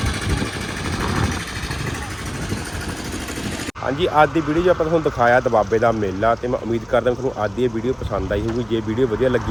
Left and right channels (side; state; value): both; identical; correlation 1.00